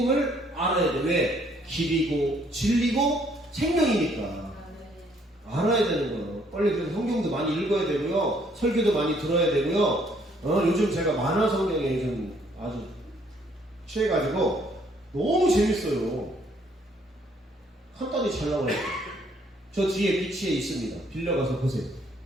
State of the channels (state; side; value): normal; both; correlation 0.65